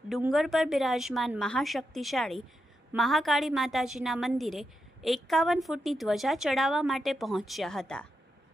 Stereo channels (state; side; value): normal; both; correlation 0.86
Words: ડુંગર પર બિરાજમાન મહાશક્તિશાળી મહાકાળી માતાજીના મંદિરે 51 ફૂટની ધ્વજા ચડાવવા માટે પહોંચ્યા હતા,